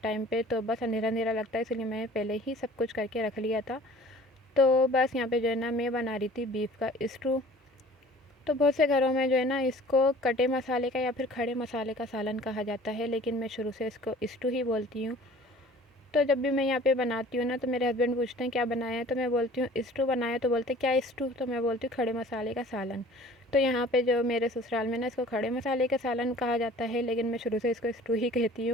पे, तो बस अंधेरा अंधेरा लगता है, इसलिए मैंने पहले ही सब कुछ करके रख लिया था। तो बस यहाँ पे जो है ना मैं बना रही थी बीफ का स्टू। तो बहुत से घरों में जो है ना इसको कटे मसाले का या फिर खड़े मसाले का सालन कहा जाता है, लेकिन मैं शुरू से इसको स्टू ही बोलती हूँ। तो जब भी मैं यहाँ पे बनाती हूँ ना तो मेरे हस्बैंड पूछते हैं क्या बनाया है, तो मैं बोलती हूँ स्टू बनाया, तो बोलते हैं क्या स्टू, तो मैं बोलती हूँ खड़े मसाले का सालन। तो यहाँ पे जो मेरे ससुराल में ना इसको खड़े मसाले का सालन कहा जाता है, लेकिन मैं शुरू से इसको स्टू ही कहती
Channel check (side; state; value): both; normal; correlation 0.48